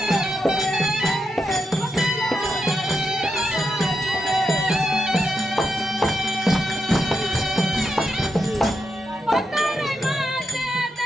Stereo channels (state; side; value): normal; both; correlation 0.85